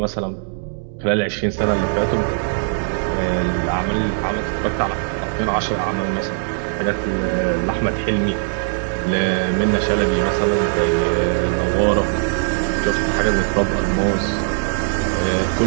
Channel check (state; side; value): silent; left; digital silence